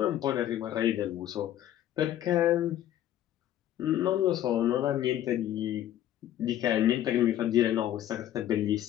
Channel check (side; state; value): right; quieter; 12.1 dB